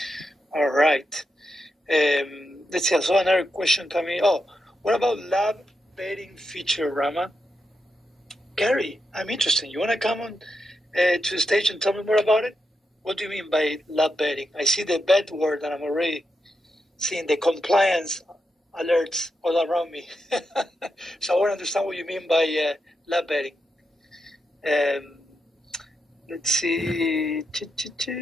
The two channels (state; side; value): normal; both; correlation 0.85